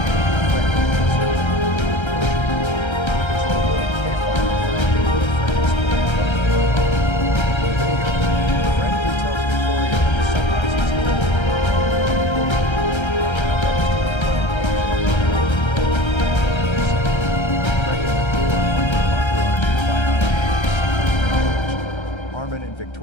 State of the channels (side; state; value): right; late; 1.3 ms